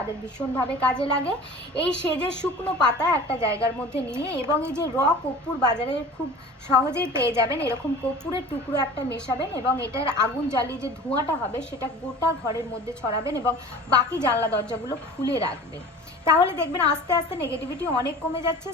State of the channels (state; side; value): normal; both; correlation 0.41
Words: ভীষণভাবে কাজে লাগে। এই সেজের শুকনো পাতা একটা জায়গার মধ্যে নিয়ে, এবং এই যে কর্পূর বাজারে খুব সহজেই পেয়ে যাবেন, এরকম কর্পূরের টুকরো একটা মেশাবেন এবং এটার আগুন জ্বালিয়ে যে ধোঁয়াটা হবে সেটা গোটা ঘরের মধ্যে ছড়াবেন এবং বাকি জানলা দরজাগুলো খুলে রাখবেন। তাহলে দেখবেন আস্তে আস্তে নেগেটিভিটি অনেক কমে যাচ্ছে।